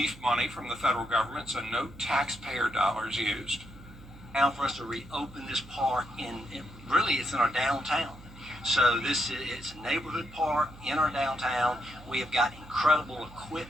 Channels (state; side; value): noise; right; hum, 19 dB below the sound